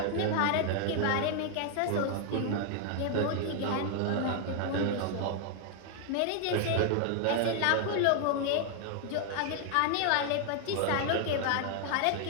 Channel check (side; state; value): both; different; correlation 0.00